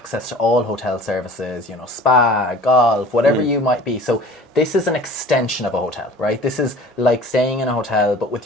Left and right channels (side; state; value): both; normal; correlation 0.45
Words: to all hotel services, spa, golf, whatever you might be. So this is an extension of a hotel, right? This is like staying in a hotel, but with